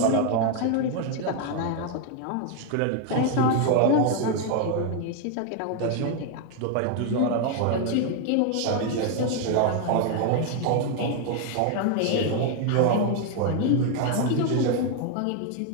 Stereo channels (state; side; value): different; both; correlation 0.01